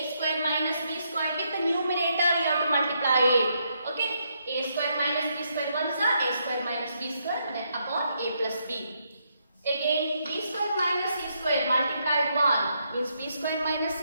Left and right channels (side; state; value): both; inverted; correlation -0.77